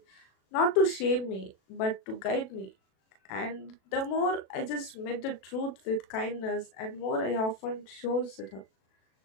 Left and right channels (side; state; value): right; late; 37 ms